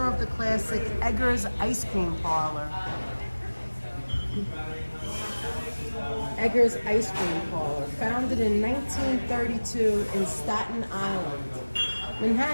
of the classic Eggers Ice Cream Parlor. Eggers Ice Cream Parlor, founded in 1932 in Staten Island.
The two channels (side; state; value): both; inverted; correlation -1.00